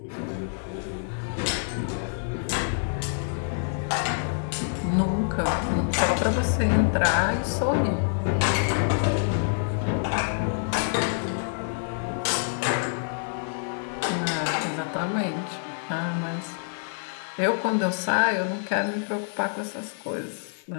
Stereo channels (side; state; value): right; silent; digital silence